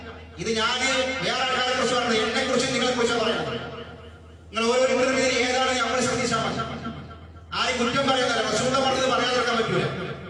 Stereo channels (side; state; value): both; identical; correlation 1.00